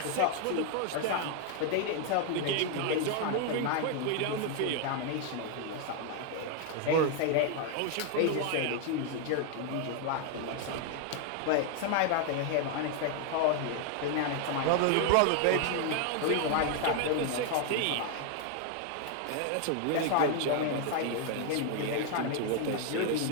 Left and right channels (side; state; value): both; different; correlation 0.00